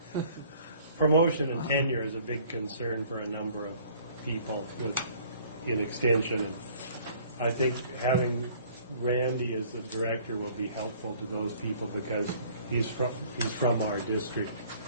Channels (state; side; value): inverted; both; correlation -0.55